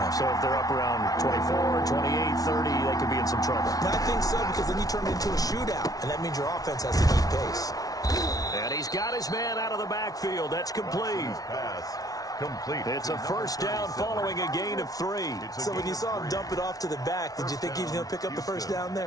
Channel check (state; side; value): late; right; 0.18 ms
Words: So if they're up around 24, 28, 30, they could be in some trouble. And I think so, because then you turn it into a shootout, and that means your offense has to keep pace. And he's got his man out of the backfield. That's complete. It's a 1st down following a gain of 3. So when you saw him dump it off to the back, did you think he was going to pick up the 1st down